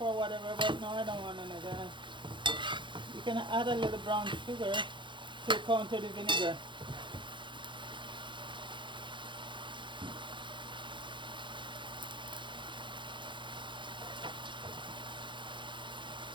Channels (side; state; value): left; late; 0.23 ms